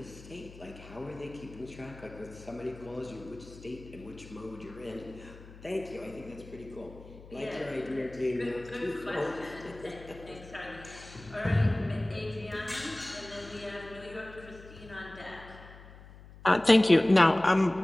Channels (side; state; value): left; noise; hum, 18 dB below the sound